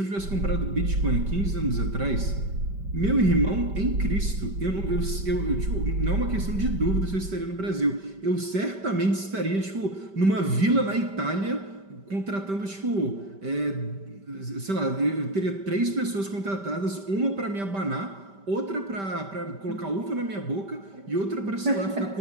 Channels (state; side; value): late; left; 5.1 ms